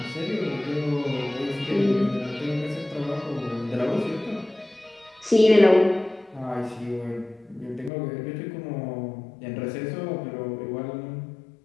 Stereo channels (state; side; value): drops out; right; at 7.9 s